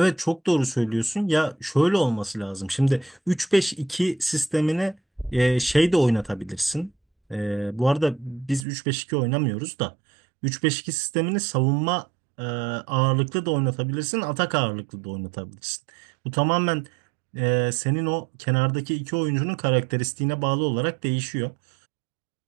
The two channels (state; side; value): drops out; left; at 8.7 s